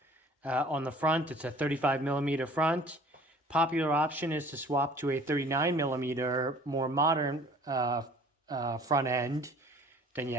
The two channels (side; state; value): both; normal; correlation 0.51